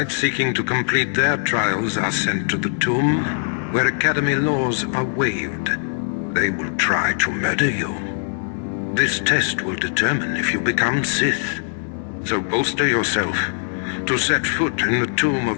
seeking to complete their trials are sent to the tomb, where Academy laws are waived. They will try to murder you. This test will determine if you become Sith. So bolster yourself. To set foot in the tomb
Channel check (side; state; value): right; silent; digital silence